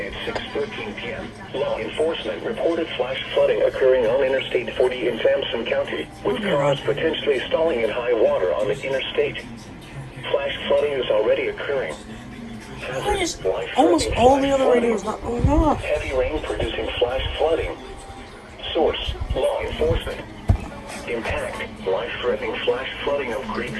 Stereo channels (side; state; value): both; identical; correlation 1.00